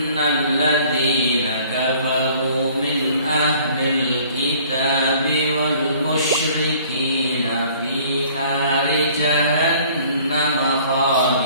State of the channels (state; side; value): inverted; both; correlation -0.54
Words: ladzina kafaru min ahlil kitabi wal musyrikina fi nari jahannam